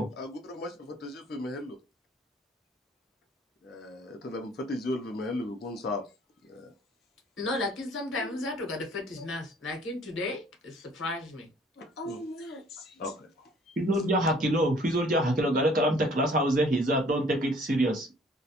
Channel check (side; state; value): both; normal; correlation 0.57